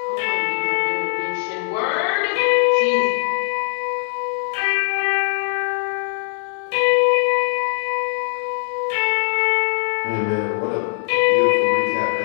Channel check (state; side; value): silent; right; 65 dB below the other